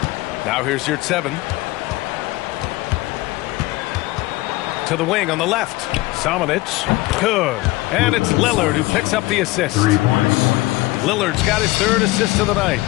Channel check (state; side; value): quieter; right; 19.7 dB